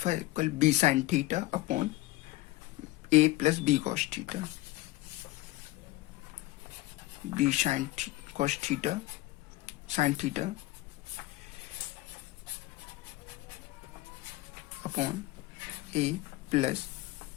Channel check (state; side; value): quieter; right; 18.4 dB